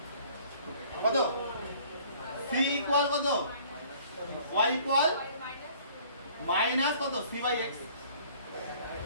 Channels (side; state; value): both; inverted; correlation -0.54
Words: কত c ইকুয়াল কত y ইকুয়াল মাইনাস কত c বাই x